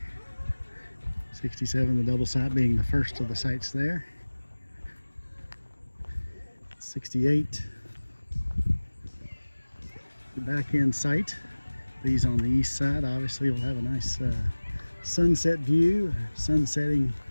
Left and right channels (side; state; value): both; inverted; correlation -1.00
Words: 67, the double site being the first of the sites there. 68, the back end site. These on the east side obviously will have a nice sunset view, sun setting